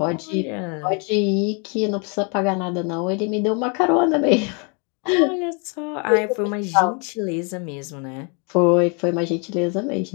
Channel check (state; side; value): quieter; right; 35.4 dB